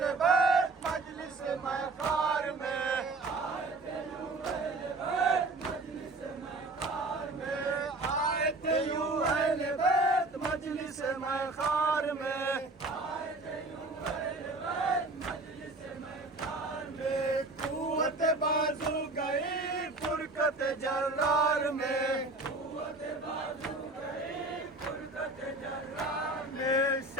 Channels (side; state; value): left; quieter; 3.1 dB